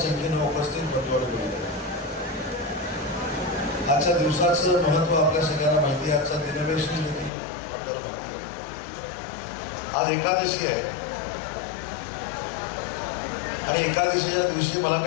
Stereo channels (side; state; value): right; drops out; at 7.3 s